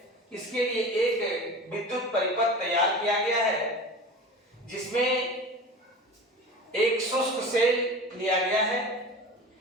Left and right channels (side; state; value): both; normal; correlation 0.34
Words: इसके लिए एक विद्युत परिपथ तैयार किया गया है जिसमें एक शुष्क सेल लिया गया है,